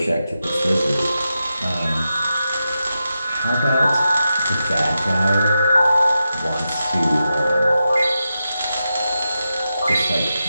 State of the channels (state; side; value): inverted; both; correlation -0.89